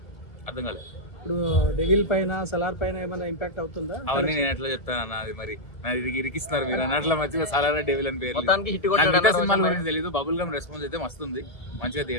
అర్థం కాలేదు. ఇప్పుడు డెవిల్ పైన, సలార్ పైన ఏమైనా ఇంపాక్ట్ అవుతుందా? అవన్నీ నేను ఎట్లా చెప్తాను అన్న, అది మరి ఇరికిస్తున్నారు మీరు అన్నట్ల మధ్య సలార్ డెవిల్ అని పేరు. మొత్తానికి హిట్ సినిమాల గురించి తెలియదు. బబుల్ గమ్ రెస్పాన్స్ అయితే మస్తుంది, మంచిగా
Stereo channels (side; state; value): right; late; 2.0 ms